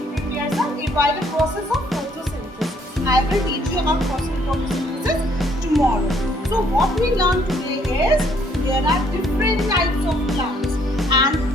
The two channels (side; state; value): both; normal; correlation 0.66